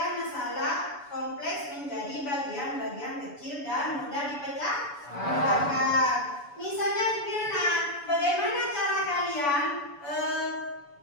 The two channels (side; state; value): right; late; 7.0 ms